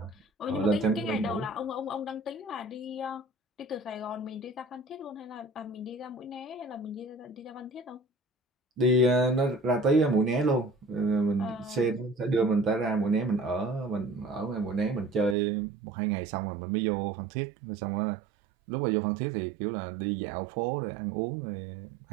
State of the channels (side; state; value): left; drops out; at 15.4 s